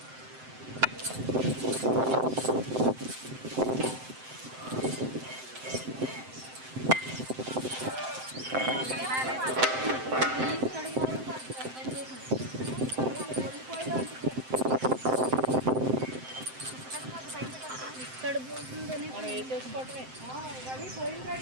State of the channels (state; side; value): late; left; 7.7 ms